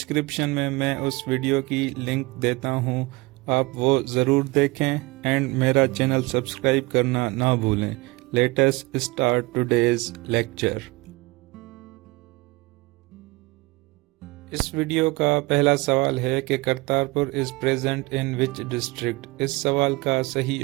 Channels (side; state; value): left; quieter; 23.0 dB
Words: میں اس ویڈیو کی لنک دیتا ہوں، آپ وہ ضرور دیکھیں اینڈ میرا چینل سبسکرائب کرنا نہ بھولیں. Let's start today's lecture. اس ویڈیو کا پہلا سوال ہے کہ Kartarpur is present in which district. اس سوال کا